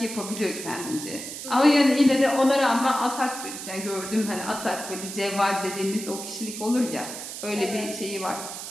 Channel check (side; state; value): right; noise; hiss, 9 dB below the sound